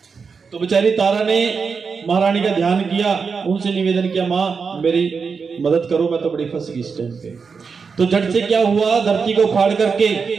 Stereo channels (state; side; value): quieter; left; 5.4 dB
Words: तो बेचारी तारा ने महारानी का ध्यान किया, उनसे निवेदन किया माँ मेरी मदद करो, मैं तो बड़ी फंस गई इस टाइम पे। तो झट से क्या हुआ, धरती को फाड़ करके